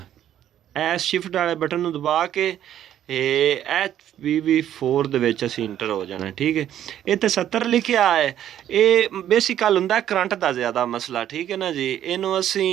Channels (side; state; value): left; quieter; 11.1 dB